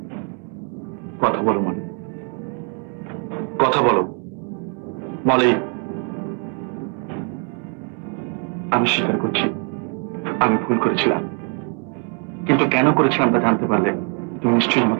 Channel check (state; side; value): quieter; left; 38.4 dB